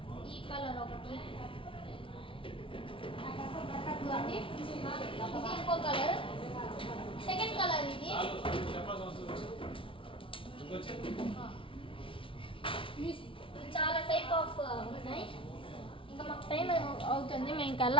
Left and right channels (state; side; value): late; right; 0.25 ms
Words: ఈ కలర్ ఒకటి ఇవ్వండి. ఇది ఇంకో కలర్, సెకండ్ కలర్. ఇది చాలా టైప్ ఆఫ్ ఉన్నాయి. ఇంకా మాకు టైం అవుతుంది, మేము ఇంకా